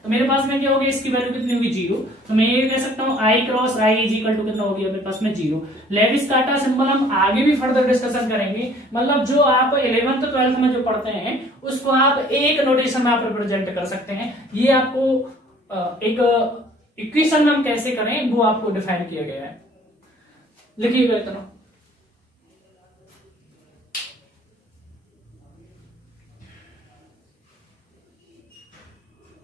तो मेरे पास में क्या हो गया, इसकी वैल्यू कितनी होगी, 0। तो मैं ये कह सकता हूं I cross I is equal to कितना हो गया मेरे पास में, 0। लेविस-काटा सिंबल हम आगे भी फर्दर डिस्कशन करेंगे, मतलब जो आप 11th 12th में जो पढ़ते हैं उसको आप एक नोटेशन में आप रिप्रेजेंट कर सकते हैं। ये आपको एक इक्वेशन में हम कैसे करें वो आपको डिफाइन किया गया है, लिखिएगा इतना।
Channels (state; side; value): normal; both; correlation 0.55